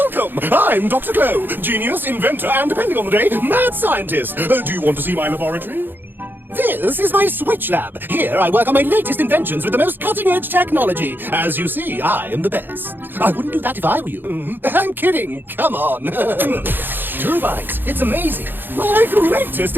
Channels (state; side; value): late; left; 0.095 ms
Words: I'm Dr. Glow, genius, inventor, and depending on the day, mad scientist. Do you want to see my laboratory? This is my Switch Lab. Here I work on my latest inventions with the most cutting-edge technology. As you see, I am the best. I wouldn't do that if I were you. I'm kidding. Come on. Turbines, it's amazing. My greatest